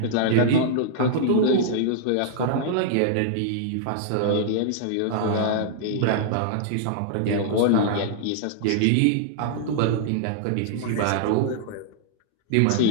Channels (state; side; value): different; both; correlation -0.01